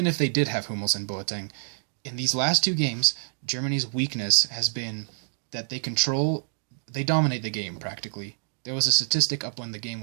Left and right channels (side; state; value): left; silent; digital silence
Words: if they did have Hummels and Boateng, in these last two games, Germany's weakness has been that they dominate the game, practically. There was a statistic up when the game